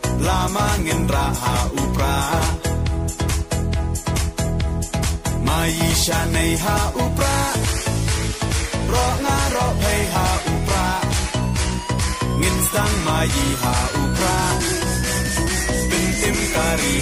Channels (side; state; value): both; identical; correlation 1.00